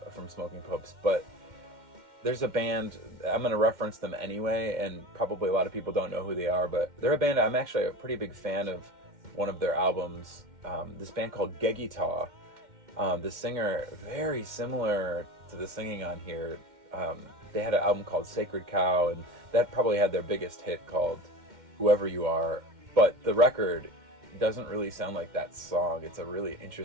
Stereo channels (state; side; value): late; left; 2.1 ms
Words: from Smoking Popes. But there's a band, I'm going to reference them anyway, and probably a lot of people don't know who they are, but they're a band I'm actually a pretty big fan of. One of their albums, this band called Gegita. The singer, very similar to the singing on here. They had an album called Sacred Cow, and that probably had their biggest hit called Whoever You Are. But the record doesn't really sound like that song. It's a really